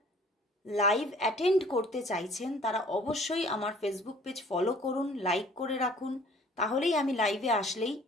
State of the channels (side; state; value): both; normal; correlation 0.53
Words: লাইভ অ্যাটেন্ড করতে চাইছেন তারা অবশ্যই আমার ফেসবুক পেজ ফলো করুন, লাইক করে রাখুন, তাহলেই আমি লাইভে আসলেই